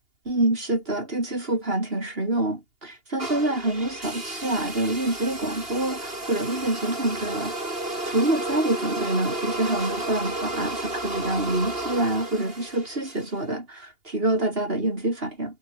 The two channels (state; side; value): late; left; 2.8 ms